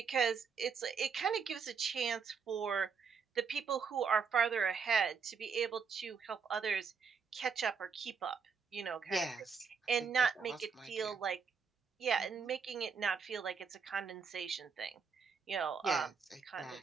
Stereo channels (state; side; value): quieter; left; 5.9 dB